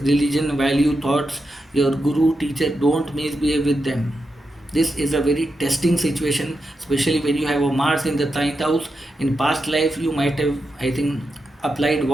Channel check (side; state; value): both; normal; correlation 0.87